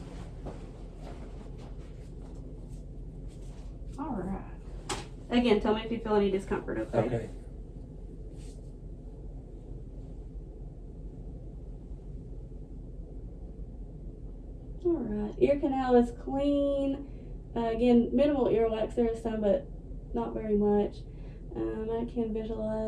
All right. Again, tell me if you feel any discomfort, okay? Okay. All right. Ear canal is clean. Again, minimal earwax. There is some, but not very much. I can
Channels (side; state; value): both; identical; correlation 1.00